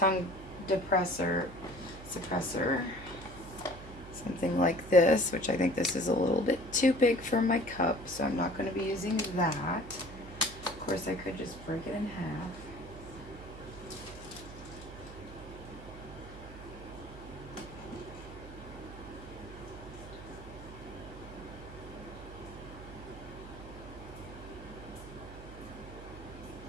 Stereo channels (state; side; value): noise; right; hum, 14 dB below the sound